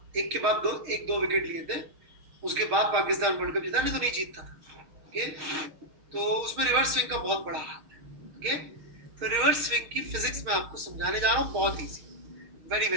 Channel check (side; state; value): left; late; 6.3 ms